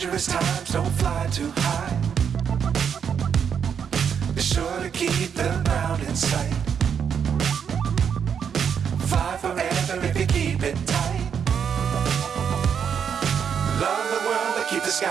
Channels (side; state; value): left; quieter; 7.5 dB